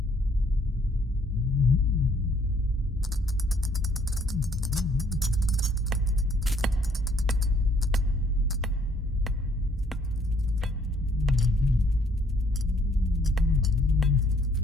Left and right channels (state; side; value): normal; both; correlation 0.64